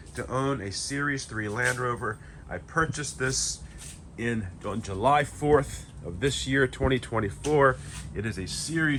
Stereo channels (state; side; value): identical; both; correlation 1.00